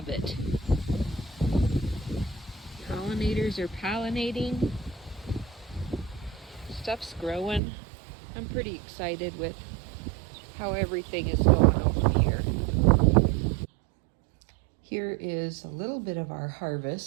it. Pollinators are pollinating. Stuff's growing. I'm pretty excited with how everything is going over here. Here is a little bit of our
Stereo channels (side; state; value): left; drops out; at 7.6 s